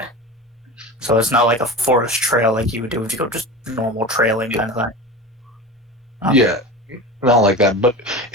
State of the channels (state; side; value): normal; both; correlation 0.30